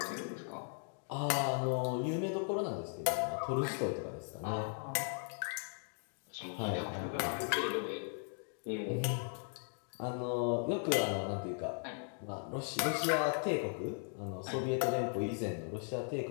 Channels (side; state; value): right; silent; 53 dB below the other